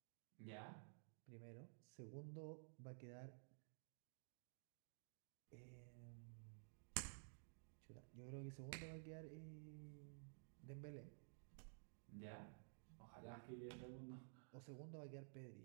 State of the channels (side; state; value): left; silent; digital silence